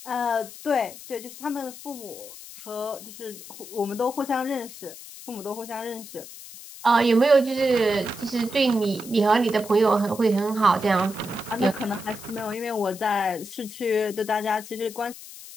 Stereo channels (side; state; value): left; noise; hiss, 15 dB below the sound